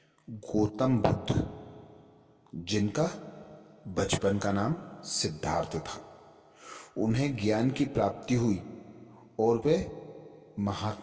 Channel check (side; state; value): both; identical; correlation 1.00